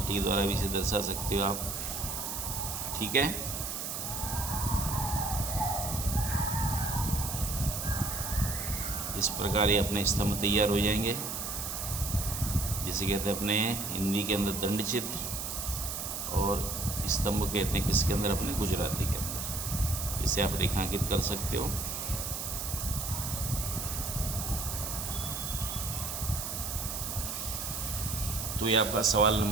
के द्वारा भी इसे दर्शा सकते हो आप। ठीक है। इस प्रकार ये अपने स्तंभ तैयार हो जाएंगे, जिसे कहते हैं अपने हिंदी के अंदर दंड चित्र और स्तंभ कहते हैं किसके अंदर, अपने गुजराती के अंदर। इसे आप रेखांकित कर सकते हो। तो ये आपका सवाल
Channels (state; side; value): noise; right; hiss, 4 dB below the sound